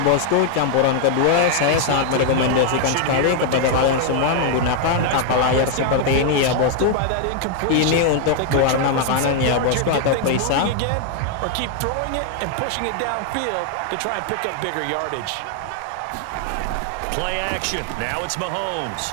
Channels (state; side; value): different; both; correlation 0.00